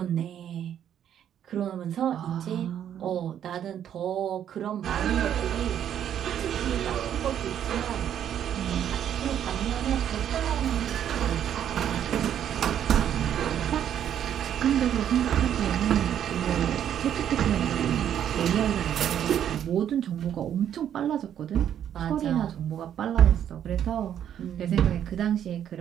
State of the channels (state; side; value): quieter; left; 9.8 dB